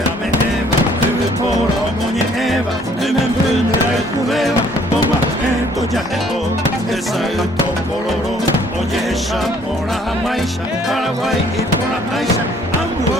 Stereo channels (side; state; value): both; normal; correlation 0.61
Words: a me eva Debe por omoñe eva Debe emprende a cubeva Toma ento ya eto Esa el topororo Oye esa por la maisha Paraguay y por la maisha